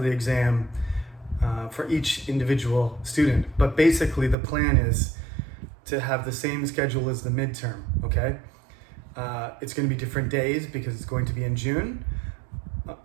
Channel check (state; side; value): drops out; left; at 4.4 s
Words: the exam for each individual student. But basically the plan is to have the same schedule as the midterm, okay? It's going to be different days because it's going to be in June.